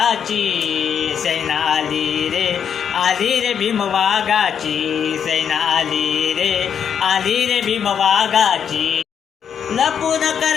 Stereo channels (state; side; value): quieter; right; 7.9 dB